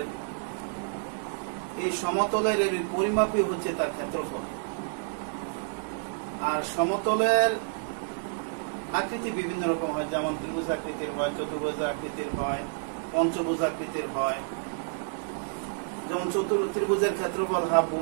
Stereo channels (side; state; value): left; silent; digital silence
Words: এই সমতলের পরিমাপই হচ্ছে তার ক্ষেত্রফল। আর সমতলের আকৃতি বিভিন্ন রকম হয়, যেমন ত্রিভুজ আকৃতির হয়, চতুর্ভুজ আকৃতির হয়, পঞ্চভুজ আকৃতির হয়। যেমন ত্রিভুজের ক্ষেত্রফল হাফ